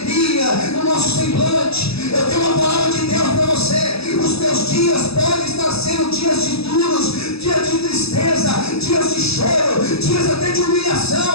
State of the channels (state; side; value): late; right; 0.78 ms